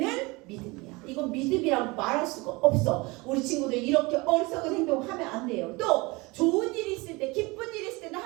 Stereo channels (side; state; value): left; quieter; 24.6 dB